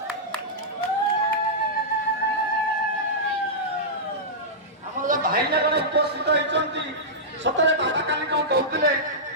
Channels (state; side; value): normal; both; correlation -0.12